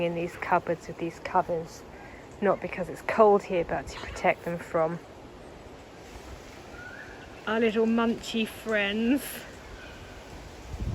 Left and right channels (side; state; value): both; identical; correlation 1.00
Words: in these cupboards with these covers. Not because it's cold here, but to protect them from our little munchy friends.